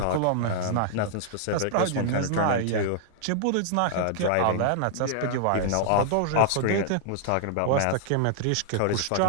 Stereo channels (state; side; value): different; both; correlation -0.01